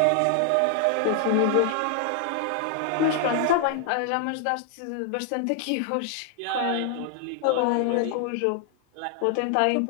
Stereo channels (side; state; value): both; different; correlation 0.00